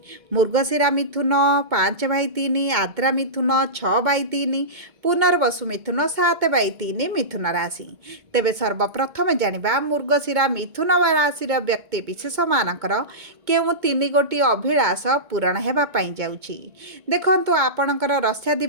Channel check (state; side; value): late; left; 2.2 ms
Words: मृगशिरा मिथुन 5/3 आद्रा मिथुन 6/3 पुनर्वसु मिथुन 7/3 मिथुन राशि। तेबे सर्वप्रथम जानिबा मृगशिरा मिथुन राशि व्यक्ति विशेष मानकर केउ तीन गोटी अभिलाष पूरण हेबा पई जाउछि। देखंतु आपणकर